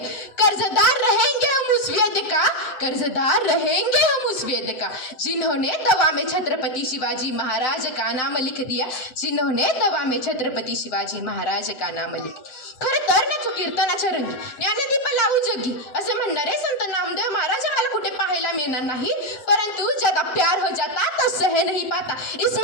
कर्जदार रहेंगे हम उस वेद का, कर्जदार रहेंगे हम उस वेद का, जिन्होंने दवा में छत्रपति शिवाजी महाराज का नाम लिख दिया, जिन्होंने दवा में छत्रपति शिवाजी महाराज का नाम लिख. खरं तर ना कीर्तनाच्या रंगी ज्ञानदीप लावू जगी असे म्हणणारे संत नामदेव महाराज आम्हाला कुठे पाहायला मिळणार नाही. परंतु ज्यादा प्यार हो जाता तो सह नहीं पाता,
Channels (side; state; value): right; late; 7.6 ms